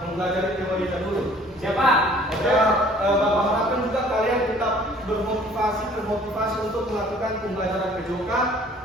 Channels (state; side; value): normal; both; correlation 0.54